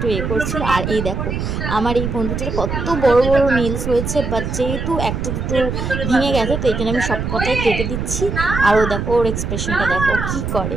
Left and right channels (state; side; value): noise; right; rumble, 3 dB below the sound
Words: করছিল। আর এই দেখো আমার এই বন্ধুটার কত বড় বড় নীলস হয়েছে, বাট যেহেতু একটা দুটো ভেঙে গেছে তো এই জন্য আমি সব কটাই কেটে দিচ্ছি। আর ও দেখো ওর এক্সপ্রেশনটা দেখো কি করে।